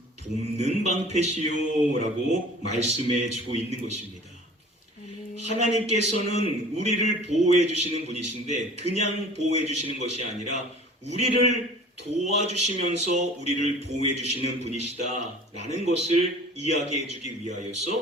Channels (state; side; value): normal; both; correlation 0.44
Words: 돕는 방패시요라고 말씀해 주고 있는 것입니다. 하나님께서는 우리를 보호해 주시는 분이신데 그냥 보호해 주시는 것이 아니라 우리를 도와주시면서 우리를 보호해 주시는 분이시다라는 것을 이야기해 주기